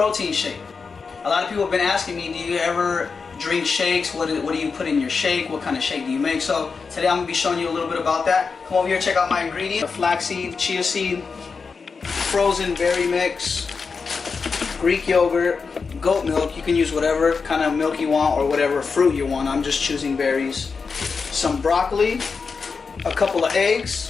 shake. A lot of people have been asking me, do you ever drink shakes? What do you put in your shake? What kind of shake do you make? So today I'm going to be showing you a little bit about that. Come over here, check out my ingredients. Flaxseed, chia seed, frozen berry mix, Greek yogurt, goat milk. You can use whatever kind of milk you want or whatever fruit you want. I'm just choosing berries. Some broccoli, a couple of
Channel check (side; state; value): right; quieter; 5.0 dB